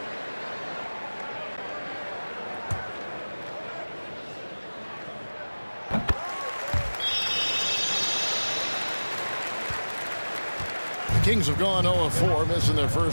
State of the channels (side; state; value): both; inverted; correlation -1.00